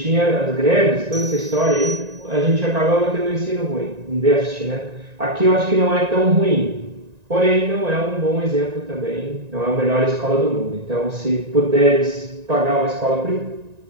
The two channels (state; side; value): late; left; 1.9 ms